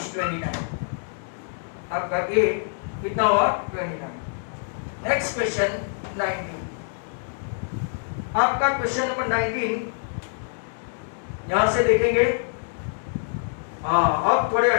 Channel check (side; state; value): right; silent; digital silence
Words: 29. आपका a कितना हुआ? 29। Next question 19। आपका question number 19 यहां से देखेंगे। अब थोड़े